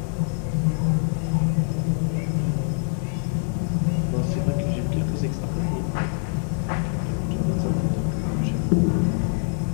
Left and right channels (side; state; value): right; silent; 56 dB below the other